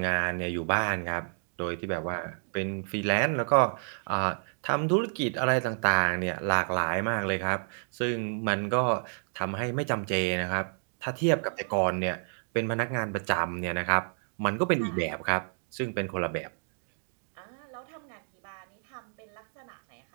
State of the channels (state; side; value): silent; left; 58 dB below the other